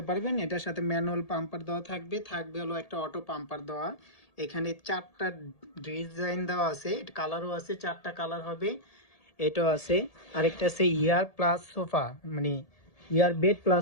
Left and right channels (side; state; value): right; late; 1.8 ms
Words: পারবেন, এটার সাথে ম্যানুয়াল পাম্পার দেওয়া থাকবে, হলো একটা অটো পাম্পার দেওয়া। এখানে 4টা ডিজাইন দেওয়া আছে, কালারও আছে, 4টা কালার হবে। এটাও আছে, আরেকটা আছে ইয়ার প্লাস সোফা, মানে ইয়ার বেড প্লাস